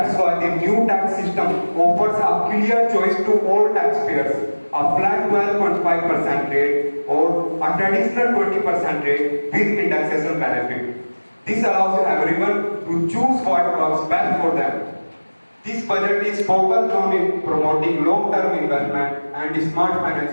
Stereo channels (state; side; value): inverted; both; correlation -1.00